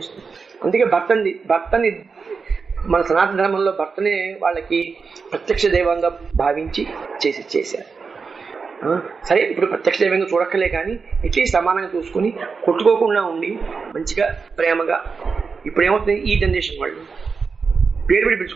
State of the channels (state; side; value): quieter; left; 5.1 dB